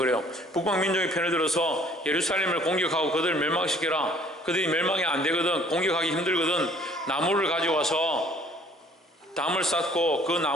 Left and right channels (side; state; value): both; normal; correlation 0.57